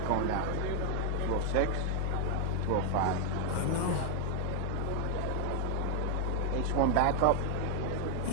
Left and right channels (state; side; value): different; both; correlation 0.00